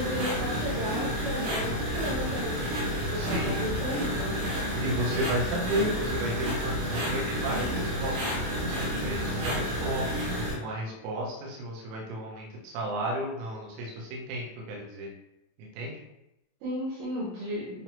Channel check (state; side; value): late; left; 27 ms